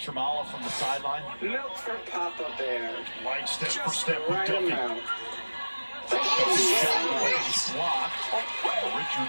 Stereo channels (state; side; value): inverted; both; correlation -1.00